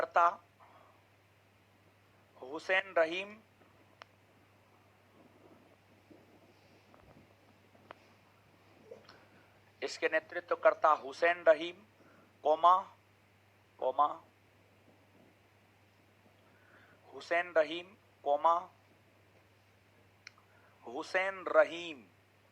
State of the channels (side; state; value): both; identical; correlation 1.00